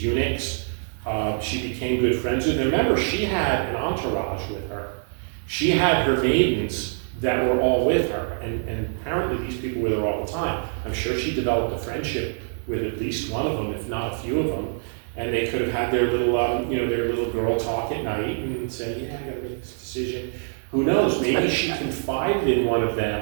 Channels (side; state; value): left; silent; 56 dB below the other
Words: eunuchs. She became good friends with. And remember, she had an entourage with her. She had her maidens that were all with her, and apparently these people were there all the time. I'm sure she developed a friendship with at least one of them, if not a few of them, and they could have had their little, their little girl talk at night and say, yeah, I gotta make this decision. Who knows, maybe she confided in one of